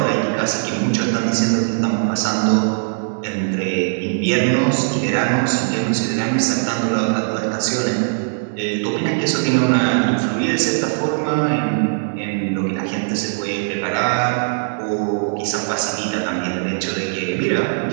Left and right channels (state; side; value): silent; left; digital silence